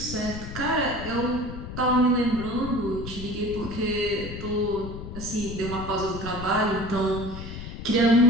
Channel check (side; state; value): left; noise; rumble, 9 dB below the sound